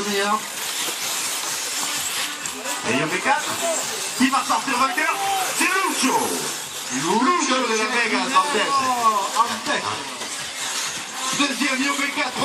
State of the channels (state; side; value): identical; both; correlation 1.00